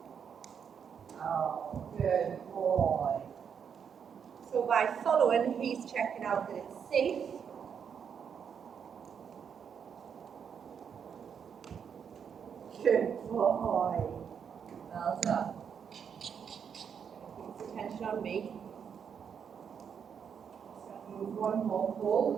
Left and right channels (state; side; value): quieter; left; 7.3 dB